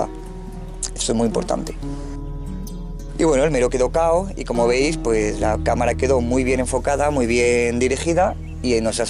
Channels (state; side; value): identical; both; correlation 1.00